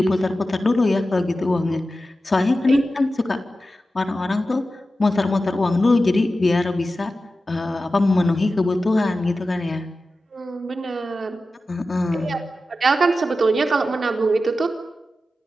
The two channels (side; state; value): both; normal; correlation 0.93